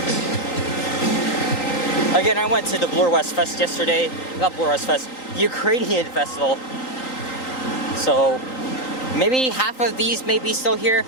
Again, I went to the Blur West Fest yesterday. Not Blur West Fest, Ukrainian Festival. So maybe half of these may be still here.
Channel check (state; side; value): late; right; 3.9 ms